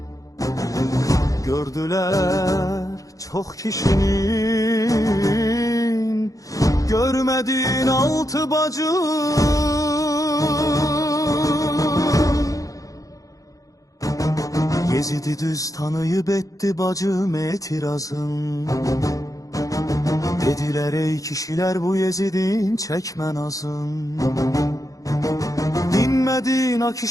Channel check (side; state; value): right; late; 0.17 ms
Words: Gördüler çok kişinin görmediğin altı bacı. Yezidi düz tanıyıp etti bacım etirazın. Dediler ey kişiler bu Yezidin çekmen azın. Dinmedin a